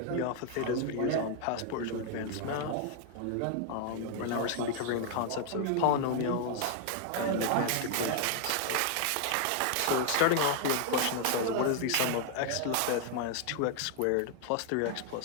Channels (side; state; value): both; different; correlation 0.00